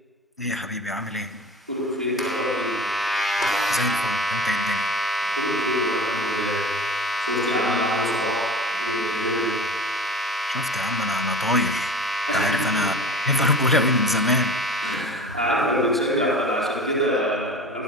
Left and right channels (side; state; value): both; normal; correlation 0.37